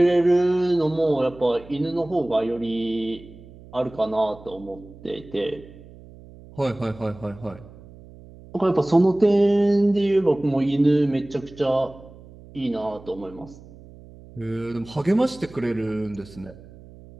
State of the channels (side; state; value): right; noise; hum, 20 dB below the sound